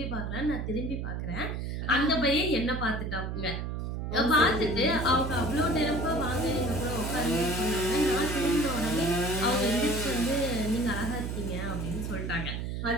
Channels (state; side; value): noise; right; hum, 4 dB below the sound